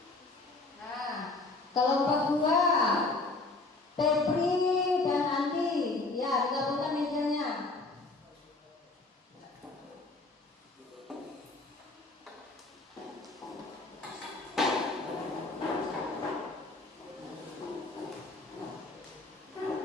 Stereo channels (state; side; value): quieter; right; 3.3 dB